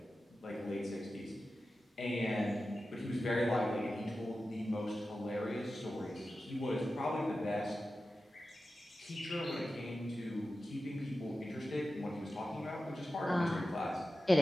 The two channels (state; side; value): normal; both; correlation 0.93